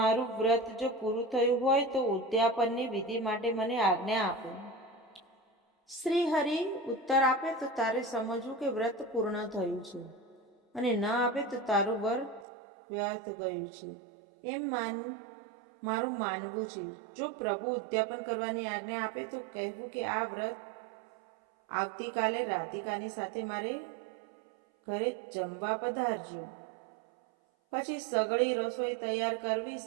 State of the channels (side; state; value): left; drops out; at 12.5 s